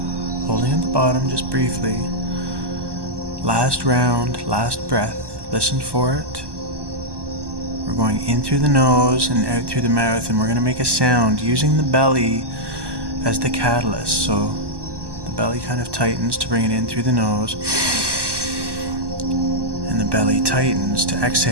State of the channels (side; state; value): left; late; 1.1 ms